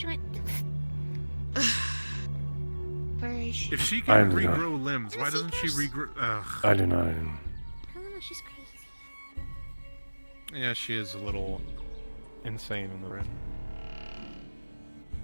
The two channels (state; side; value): inverted; both; correlation -1.00